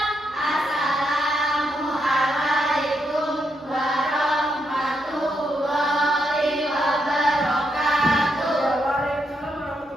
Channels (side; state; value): both; normal; correlation 0.80